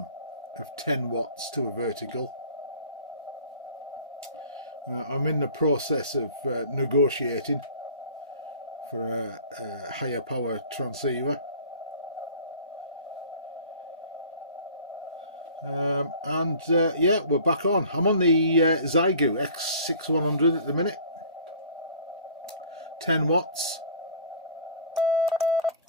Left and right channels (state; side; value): inverted; both; correlation -0.44